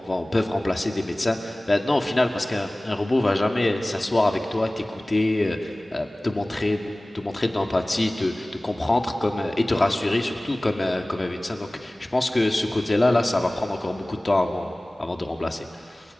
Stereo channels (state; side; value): normal; both; correlation 0.98